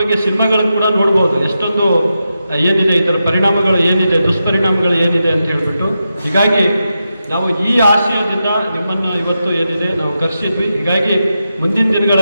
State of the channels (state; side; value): inverted; both; correlation -0.88